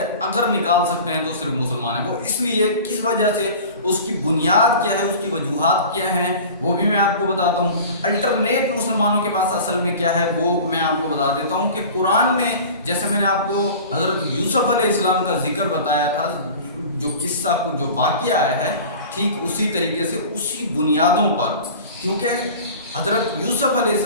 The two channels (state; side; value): inverted; both; correlation -0.39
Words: اگر نکال سکتے ہیں تو صرف مسلمان ہیں۔ وہ اس لیے کس وجہ سے، اس کی بنیاد کیا ہے، اس کی وجوہات کیا ہیں، وہ بھی میں آپ کو بتاتا ہوں۔ الٹرنیٹ مسلمانوں کے پاس اصل میں کیا ہے وہ میں آپ کو بتا دیتا ہوں کہ قرآن میں جیسے میں نے آپ کو حضرت یوسف علیہ السلام کا ذکر بتایا تھا، جو قصہ کو جو واقعہ آیا ہے، ٹھیک اسی طریقے سے اسی بنیادوں پر، کیونکہ حضرت یوسف علیہ